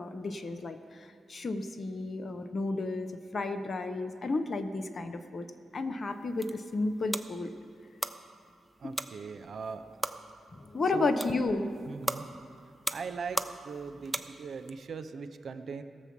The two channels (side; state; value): both; normal; correlation 0.88